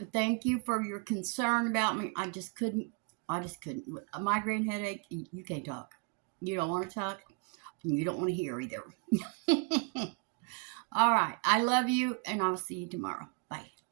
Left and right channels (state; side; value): quieter; left; 34.5 dB